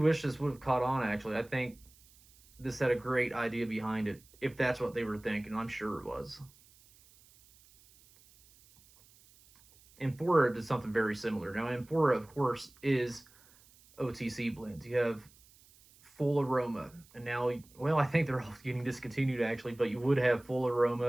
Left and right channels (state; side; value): noise; right; hiss, 27 dB below the sound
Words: this would have caught on, actually. I think this had a great idea behind it, if that's what they were thinking. I'm sure it was. Amphora did something very similar. Now, Amphora, of course, is OTC blends. You have full aroma, and now, well, I think they're all getting discontinued, actually, but you would have full